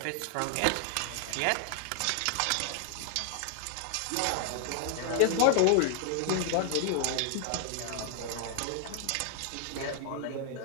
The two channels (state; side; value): different; both; correlation 0.00